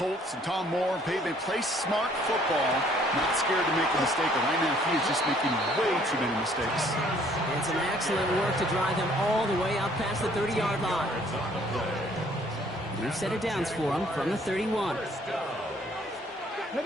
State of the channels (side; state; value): both; normal; correlation 0.61